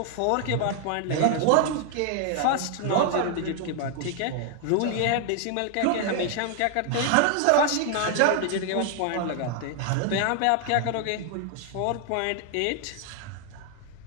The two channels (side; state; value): both; different; correlation 0.00